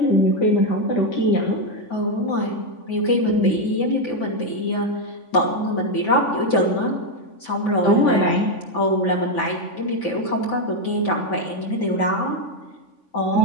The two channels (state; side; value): late; right; 3.5 ms